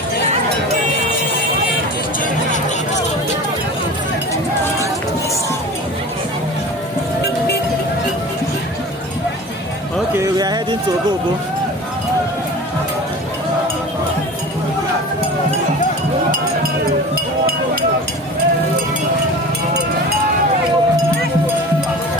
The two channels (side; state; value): both; normal; correlation 0.36